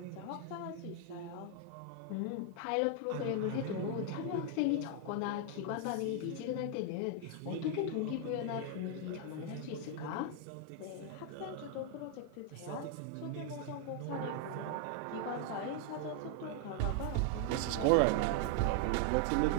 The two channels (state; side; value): different; both; correlation 0.00